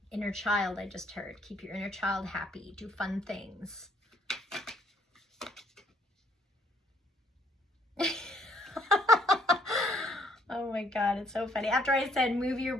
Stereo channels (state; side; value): normal; both; correlation 0.66